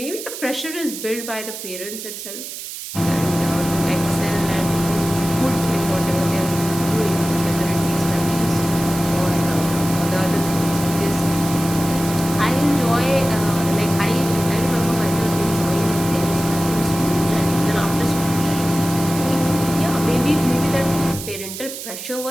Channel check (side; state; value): right; noise; hiss, 9 dB below the sound